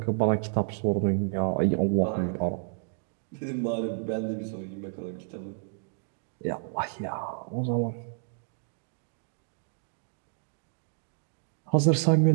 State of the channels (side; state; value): left; silent; digital silence